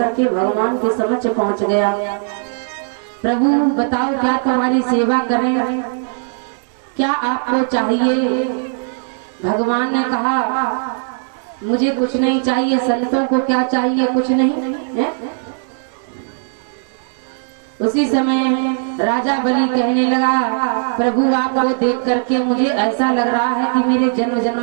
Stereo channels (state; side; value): silent; left; digital silence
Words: भगवान के समक्ष पहुंच गया। प्रभु बताओ क्या तुम्हारी सेवा करें, क्या आपको चाहिए? भगवान ने कहा मुझे कुछ नहीं चाहिए। संतों को क्या चाहिए? कुछ नहीं है? उसी समय राजा बलि कहने लगा, प्रभु आपको देख करके मुझे ऐसा लग रहा है कि मेरे जन्म